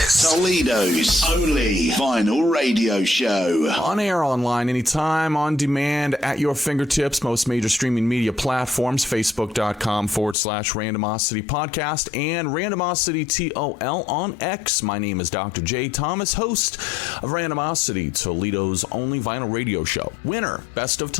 Toledo's only vinyl radio show. On air, online, anytime, on demand, at your fingertips. Most major streaming media platforms. Facebook.com/Randomosity Podcast and Randomosity TOL on X. My name is Dr. J. Thomas, host of Randomosity, Toledo's only vinyl radio show. Winner, Best of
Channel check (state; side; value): drops out; right; at 10.4 s